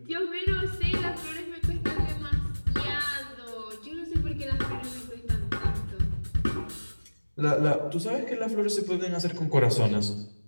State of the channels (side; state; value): both; inverted; correlation -1.00